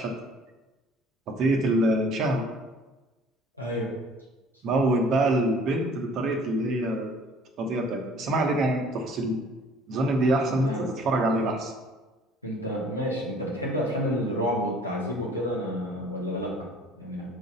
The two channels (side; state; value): both; normal; correlation 0.53